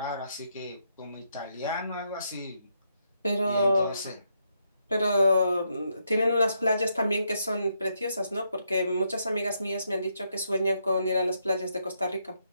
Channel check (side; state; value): both; inverted; correlation -0.78